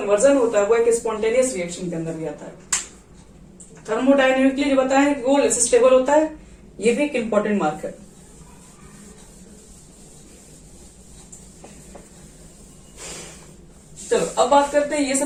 होता है वो एक स्पॉन्टेनियस रिएक्शन के अंदर भी आता है। थर्मोडायनेमिकली जो बताया कि वो लेस स्टेबल होता है, ये भी एक इंपॉर्टेंट मार्क है। चलो अब बात करते हैं, ये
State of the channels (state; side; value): identical; both; correlation 1.00